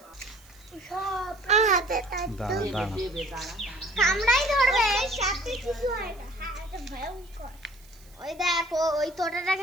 কামড়াই ধরবে সাথে কিছু হয় না এটা ভয়ঙ্কর ওই দেখো ওই তোটাটা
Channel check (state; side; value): noise; right; hiss, 27 dB below the sound